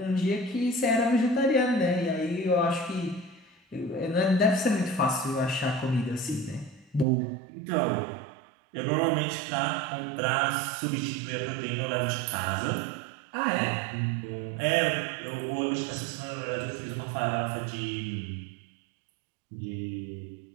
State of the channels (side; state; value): left; drops out; at 7.1 s